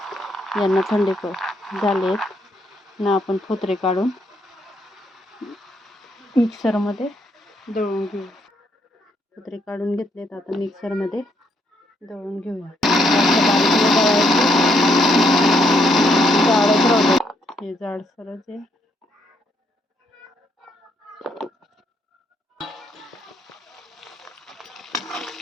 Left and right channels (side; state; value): both; normal; correlation 0.74